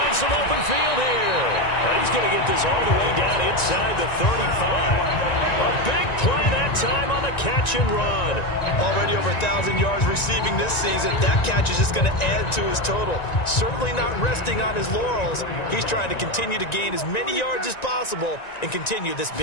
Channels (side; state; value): right; late; 1.9 ms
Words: some open field here. And he's going to get this all the way down inside the 35. A big play that time on the catch and run. Already over 1,000 yards receiving this season. That catch is just going to add to his total. Certainly not resting on his laurels. He's trying to continue to gain as many yards as possible and continue this